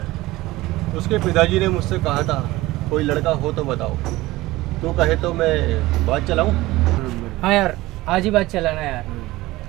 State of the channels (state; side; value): quieter; left; 18.4 dB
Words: उसके पिताजी ने मुझसे कहा था कोई लड़का हो तो बताओ। तू कहे तो मैं बात चलाऊं? हाँ यार, आज ही बात चलाना यार।